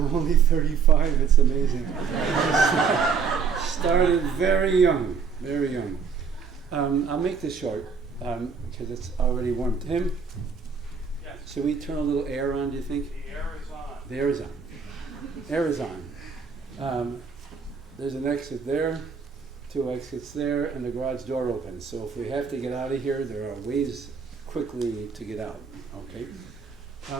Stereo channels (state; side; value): quieter; left; 6.0 dB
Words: only 35, it's amazing. Started very young, very young. I'll make this short, because it's already warm. Tim? Yes. Should we turn a little air on, do you think? The air is on. The air is on. Air is on. There's an exit there, 2 exits there, and the garage door opens. So if we have to get out of here, there are ways quickly to get out, okay?